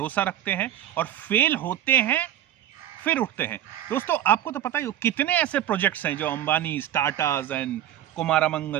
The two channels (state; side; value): quieter; left; 12.0 dB